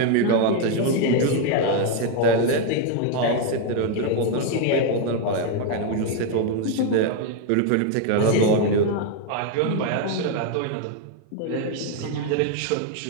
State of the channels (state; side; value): different; both; correlation 0.01